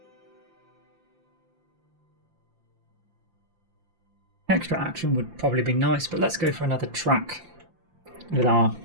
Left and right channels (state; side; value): late; left; 5.7 ms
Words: extra action would probably be nice, but let's go for another track with our